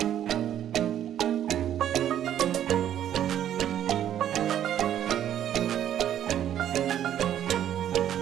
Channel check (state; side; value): quieter; left; 10.7 dB